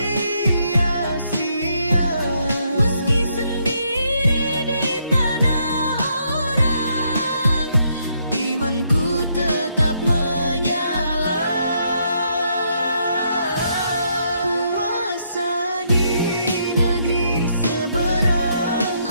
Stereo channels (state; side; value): inverted; both; correlation -0.74